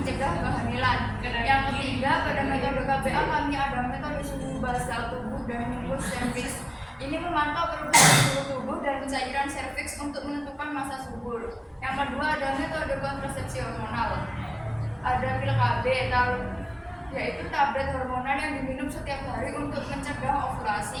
kehamilan. Yang ketiga pada metode KB alami ada metode suhu basal tubuh dan nyumbus serviks. Ini memantau perubahan suhu tubuh dan cairan serviks untuk menentukan masa subur. Yang kedua ada metode kontrasepsi hormonal. Ada pil KB, yaitu tablet hormonal yang diminum setiap hari untuk mencegah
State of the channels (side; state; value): both; identical; correlation 1.00